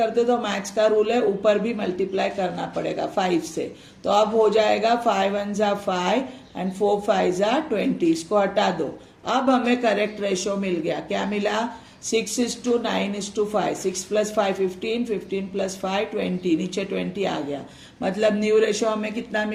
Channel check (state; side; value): identical; both; correlation 1.00